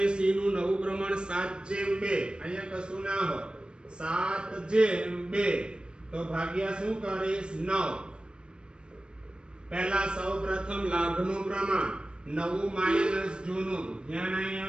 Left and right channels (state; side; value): late; left; 0.052 ms